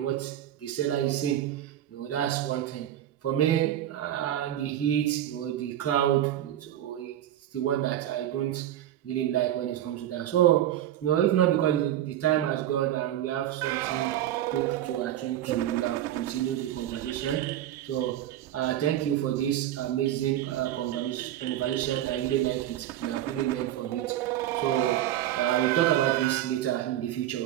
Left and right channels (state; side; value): quieter; left; 12.3 dB